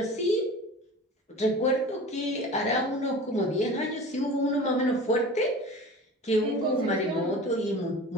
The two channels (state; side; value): normal; both; correlation 0.38